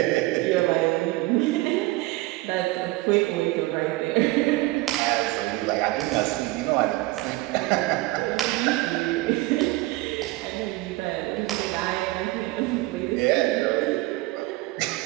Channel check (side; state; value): left; quieter; 19.8 dB